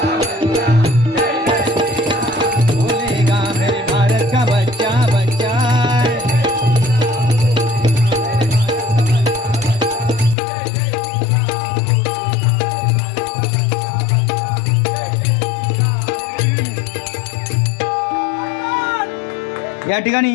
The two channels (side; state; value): right; drops out; at 10.4 s